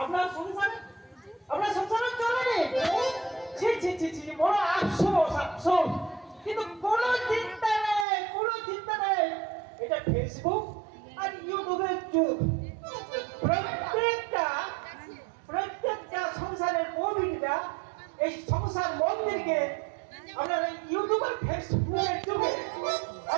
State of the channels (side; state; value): left; drops out; at 8.1 s